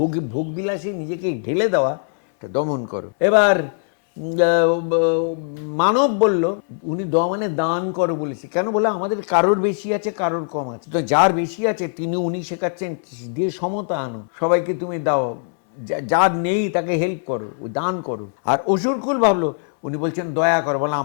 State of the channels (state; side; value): silent; right; 65 dB below the other